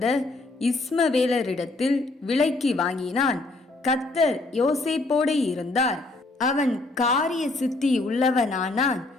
இஸ்மவேலரிடத்தில் விலைக்கு வாங்கினான். கர்த்தர் யோசேப்போடு இருந்தார். அவன் காரிய சித்தி உள்ளவனானான்.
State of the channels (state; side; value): quieter; right; 3.1 dB